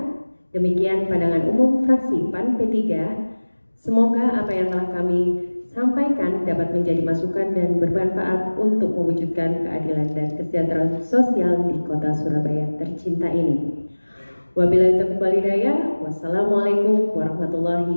demikian pandangan umum fraksi PAN P3. Semoga apa yang telah kami sampaikan dapat menjadi masukan dan bermanfaat untuk mewujudkan keadilan dan kesejahteraan sosial di Kota Surabaya tercinta ini. Wabillahi taufiq wal hidayah. Wassalamualaikum warahmatullahi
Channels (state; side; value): inverted; both; correlation -1.00